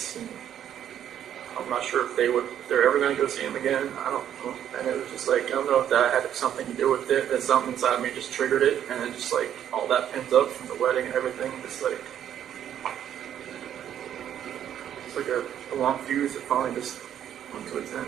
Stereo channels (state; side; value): quieter; left; 10.1 dB